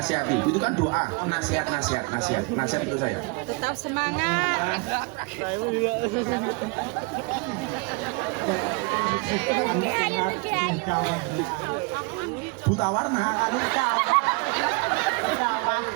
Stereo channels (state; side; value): quieter; left; 29.6 dB